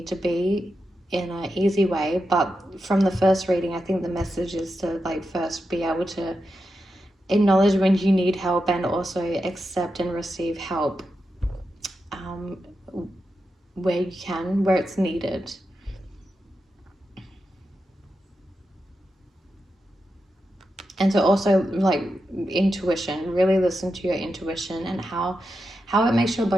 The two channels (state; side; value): normal; both; correlation 0.88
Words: to be in an easy way. But from the first reading, I think the message is to like first be able to acknowledge when you need help and also accept and receive help where you can, where it's needed. And to also like intuition, really listen to your intuition and how it makes your